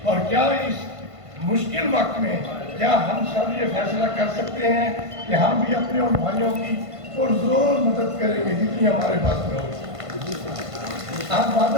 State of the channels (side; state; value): left; late; 1.5 ms